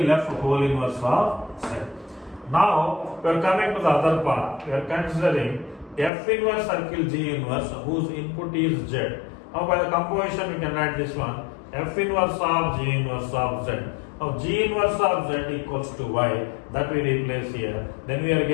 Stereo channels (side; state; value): right; drops out; at 6.1 s